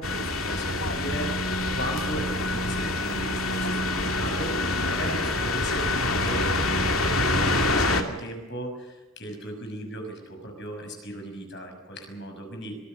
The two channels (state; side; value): normal; both; correlation 0.39